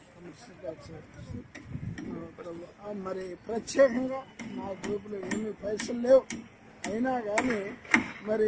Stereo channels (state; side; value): identical; both; correlation 1.00